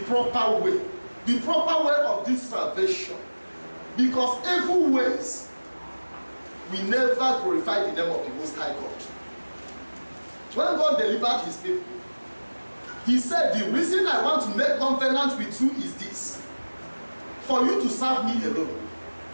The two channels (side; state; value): both; inverted; correlation -1.00